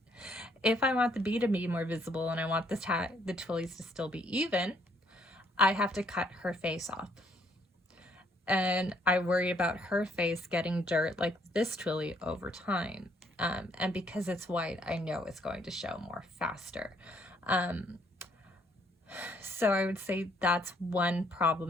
if I want the B to be more visible and I want the twillies to still be even, I have to cut her face off. And I worry about her face getting dirt like this twilly over time. And because it's white, I know it's going to show more faster. So I would say that's one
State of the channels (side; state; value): both; normal; correlation 0.68